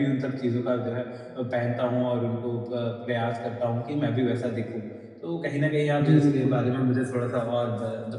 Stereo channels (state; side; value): identical; both; correlation 1.00